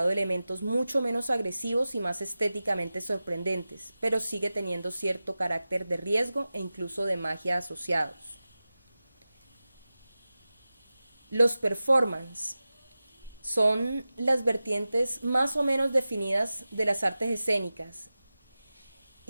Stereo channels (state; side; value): inverted; both; correlation -0.95